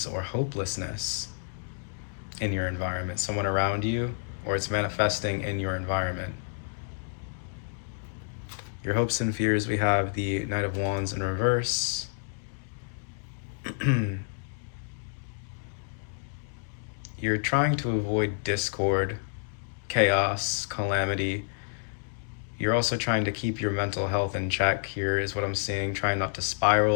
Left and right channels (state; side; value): silent; right; digital silence